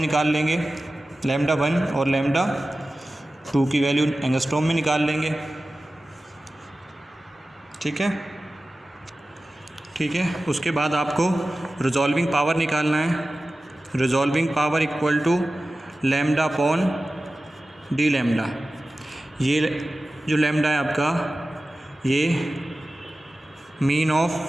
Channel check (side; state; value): both; normal; correlation 0.95